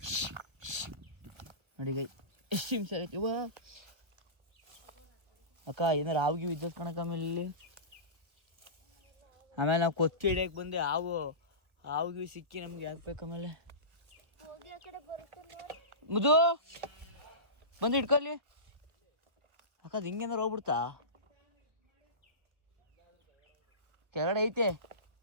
ನೋಡಿ ಗೈ ಎಷ್ಟು ಹಿಂಸೆ ಆಗೈತಿ. ಇವ ಅಕ್ಕ ಏನಾರು ಹಾವಿಗೆ ವಿದ್ಯುತ್ ಕಣಕ್ಕ. ಆಮೇಲೆ ಇಲ್ಲಿ ಆಮೇಲೆ ನಾವು ಕೊಚ್ಚಿ ಹಿಡಿಯಕ್ಕೆ ಬಂದೆ. ಹಾವಿಗೆ ಸಿಕ್ಕಿ ನಮ್ಗೆ ಯಾಕೆ ಬೇಕು. ಆಮೇಲೆ ಮುದು ಬಂದು ಹಿಡ್ಕೊಳ್ಳಿ ಅಕ್ಕ. ಅದು ಹಿಂಗೇನಾರು ಹೋಗ್ಬಿಡ್ತಾ. ಕೆಳಗಡೆ ಐತೆ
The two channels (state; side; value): late; left; 1.4 ms